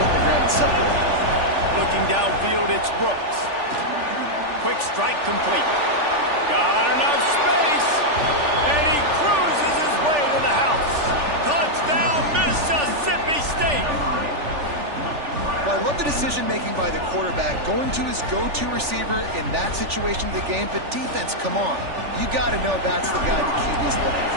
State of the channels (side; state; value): left; late; 3.4 ms